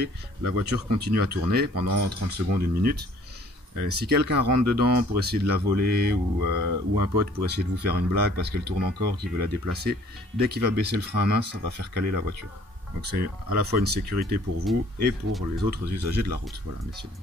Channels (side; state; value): both; normal; correlation 0.57